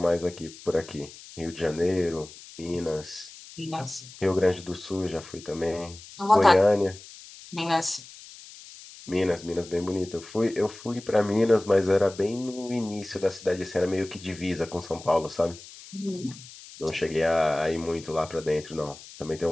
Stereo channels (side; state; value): left; noise; hiss, 18 dB below the sound